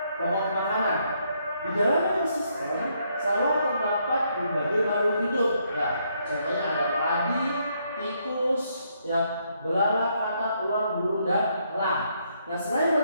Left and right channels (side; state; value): both; inverted; correlation -0.74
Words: makanan. Di dalam ekosistem sawah terdapat berbagai makhluk hidup. Ya, contohnya ada padi, tikus, ya, belalang, katak, ular, burung, dan elang. Nah, selain